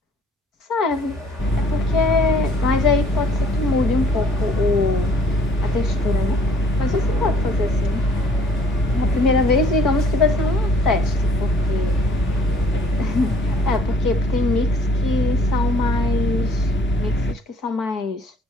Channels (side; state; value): both; normal; correlation 0.58